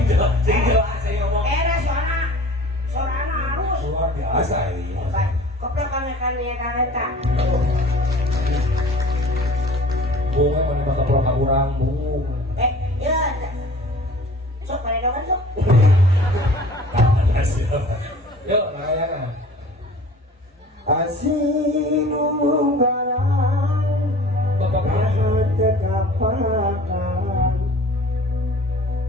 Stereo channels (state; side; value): normal; both; correlation 0.46